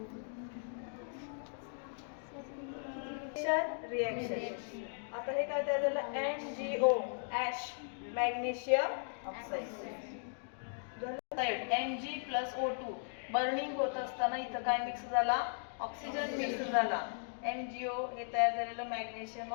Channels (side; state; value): right; silent; digital silence